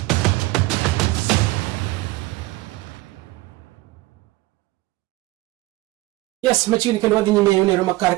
Yes, machini kendo wadhi nyime yone Roma kar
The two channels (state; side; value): quieter; left; 19.6 dB